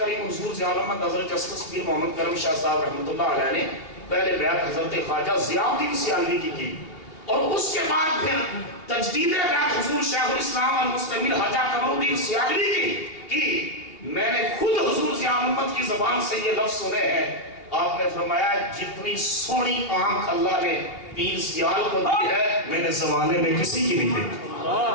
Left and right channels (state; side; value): late; right; 2.8 ms